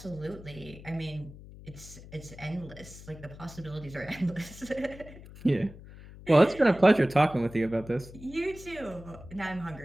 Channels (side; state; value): left; noise; hum, 17 dB below the sound